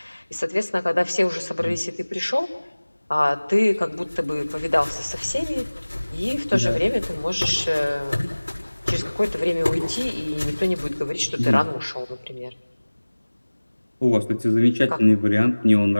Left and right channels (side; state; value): both; inverted; correlation -1.00